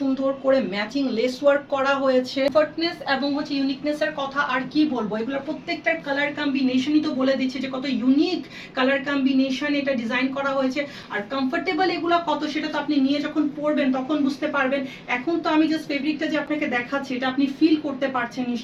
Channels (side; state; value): both; identical; correlation 1.00